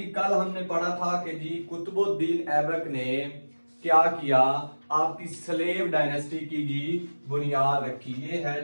कल हमने पढ़ा था कि जी कुतुबुद्दीन ऐबक ने क्या किया, आपकी स्लेव डायनेस्टी की जी बुनियाद रखी। ये है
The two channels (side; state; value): both; inverted; correlation -1.00